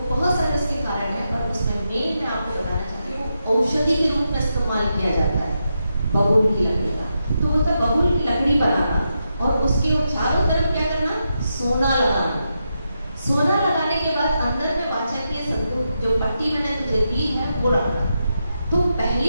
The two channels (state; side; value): inverted; both; correlation -0.85